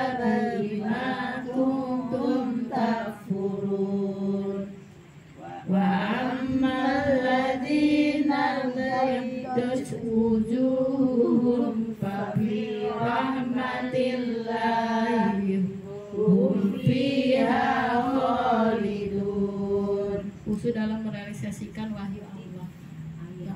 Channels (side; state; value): both; identical; correlation 1.00